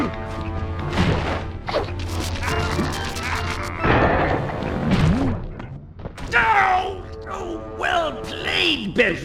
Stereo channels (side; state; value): both; identical; correlation 1.00